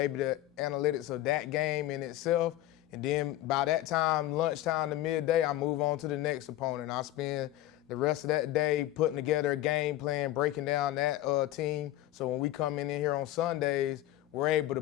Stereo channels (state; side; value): quieter; right; 14.4 dB